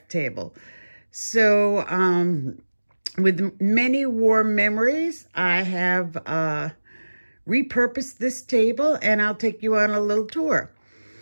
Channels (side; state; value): both; inverted; correlation -1.00